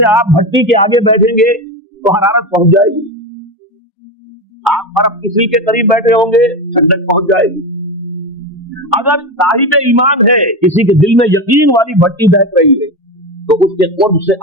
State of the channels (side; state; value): both; normal; correlation 0.19